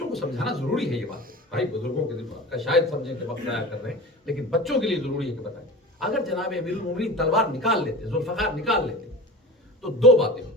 کو سمجھانا ضروری ہے یہ بات. بھائی بزرگوں کے دماغ کا شاید سمجھیں کہ وقت ضائع کر رہے ہیں، لیکن بچوں کے لیے ضروری ہے کہ بتائیں. اگر جناب امیر المومنین تلوار نکال لیتے، ذوالفقار نکال لیتے، تو 2 باتیں ہوتی.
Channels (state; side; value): normal; both; correlation 0.33